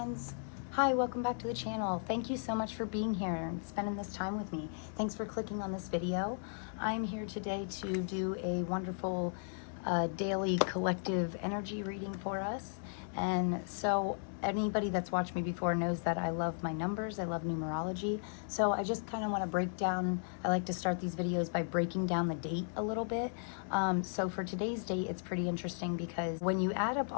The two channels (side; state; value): right; silent; digital silence